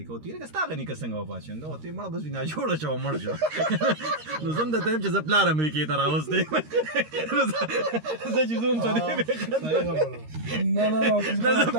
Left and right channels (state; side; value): late; left; 13 ms